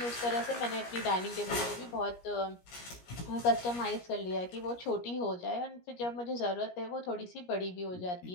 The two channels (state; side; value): late; right; 17 ms